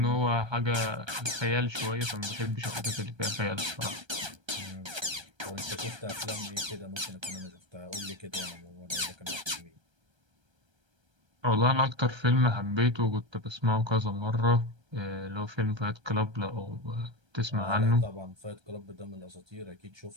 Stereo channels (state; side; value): late; left; 1.3 ms